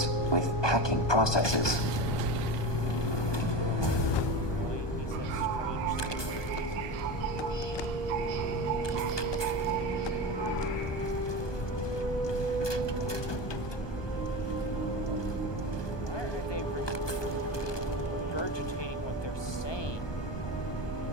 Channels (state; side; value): late; right; 1.2 ms